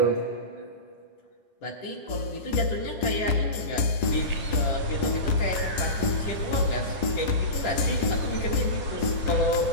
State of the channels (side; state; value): right; late; 10 ms